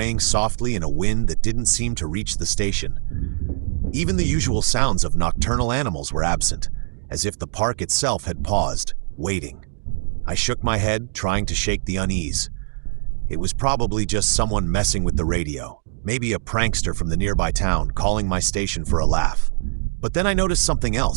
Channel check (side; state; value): left; silent; digital silence